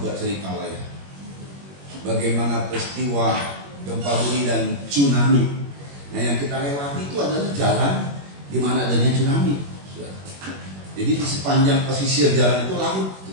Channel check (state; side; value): late; left; 21 ms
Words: cerita lah ya, bagaimana peristiwa gempa bumi dan tsunami. Nah yang kita lewati itu adalah jalan di mana adanya tsunami. Jadi di sepanjang pesisir jalan itu laut